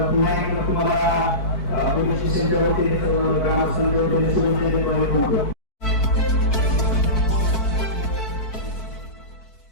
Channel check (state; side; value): late; right; 4.5 ms